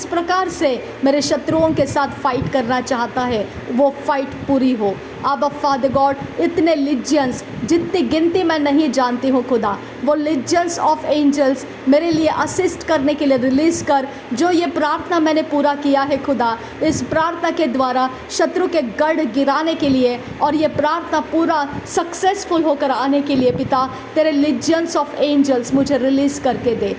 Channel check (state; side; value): identical; both; correlation 1.00